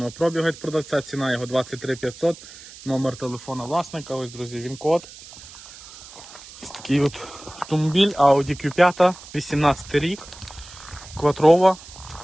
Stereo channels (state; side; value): noise; right; hiss, 18 dB below the sound